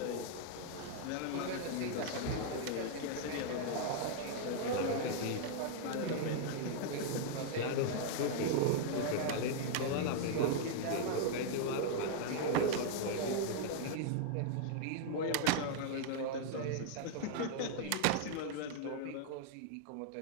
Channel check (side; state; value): both; different; correlation -0.01